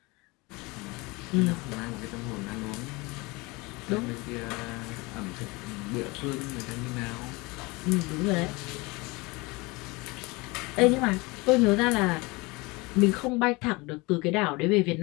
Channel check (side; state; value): right; quieter; 24.7 dB